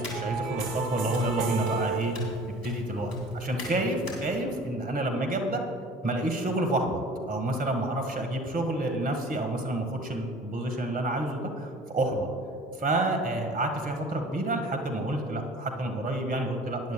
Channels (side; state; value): both; normal; correlation 0.46